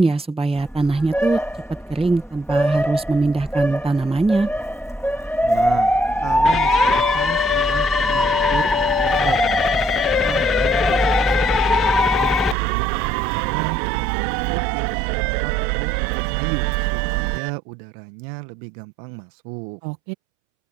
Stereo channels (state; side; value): drops out; left; at 12.6 s